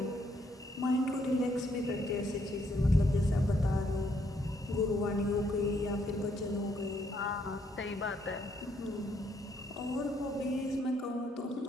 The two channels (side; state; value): both; normal; correlation 0.72